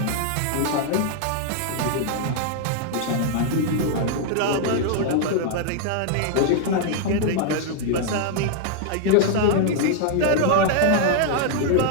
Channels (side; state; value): both; different; correlation 0.00